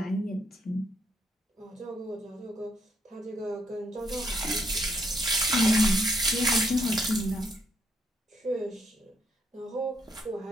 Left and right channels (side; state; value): both; normal; correlation 0.73